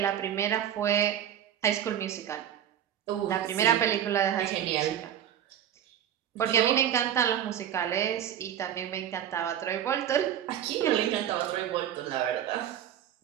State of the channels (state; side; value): quieter; left; 10.3 dB